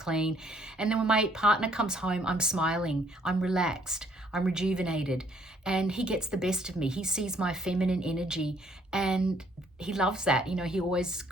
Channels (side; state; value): both; normal; correlation 0.64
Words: And then when my partner comes home, I'm smiling, I'm relaxed, I'm rejuvenated, and he gets the best of me. He sees my feminine energy and he loves that. You know, he always